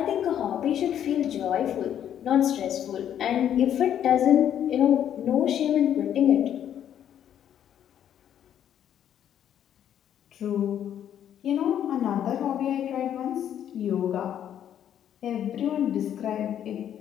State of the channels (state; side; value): quieter; right; 10.0 dB